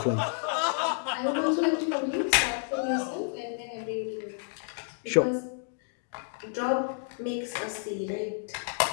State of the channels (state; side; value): silent; right; digital silence